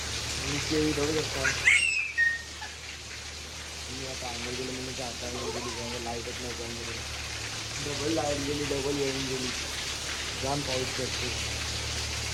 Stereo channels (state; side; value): identical; both; correlation 1.00